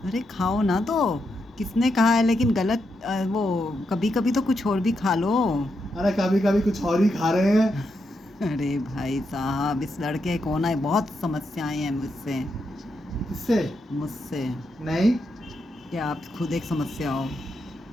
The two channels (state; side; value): normal; both; correlation 0.83